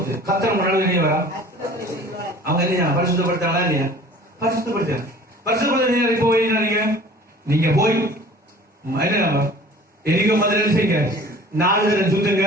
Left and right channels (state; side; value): normal; both; correlation 0.46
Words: கத்தர் முன்னாடி வெளியே வரா. அவங்க என்ன பரிசுத்தப்படுத்தாங்களா இல்லையா? பரிசுத்தப்படுத்த போய் நீங்க போய் என்ன எரிகோ மதுரை செய்யுங்க, 4 தடவை சுத்துங்க,